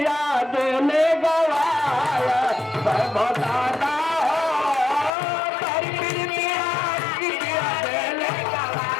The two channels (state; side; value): drops out; right; at 5.1 s